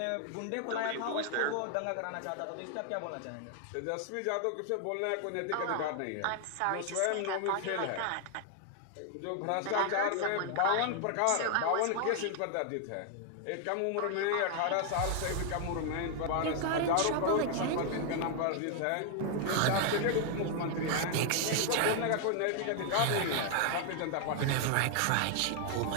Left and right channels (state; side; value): different; both; correlation 0.00